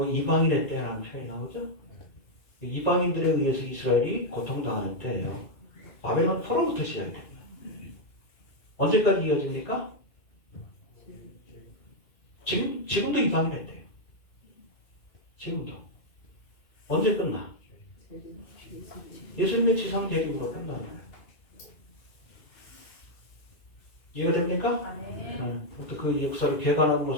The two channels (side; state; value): right; late; 2.4 ms